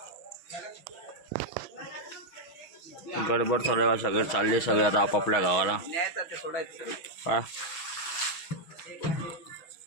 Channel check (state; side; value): late; right; 6.4 ms